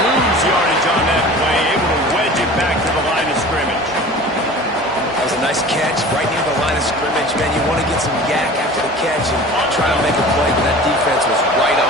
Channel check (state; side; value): normal; both; correlation 0.40